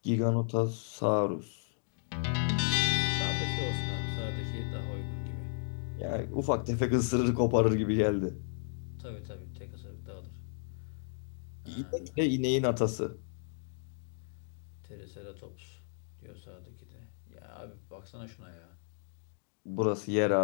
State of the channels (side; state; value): right; silent; digital silence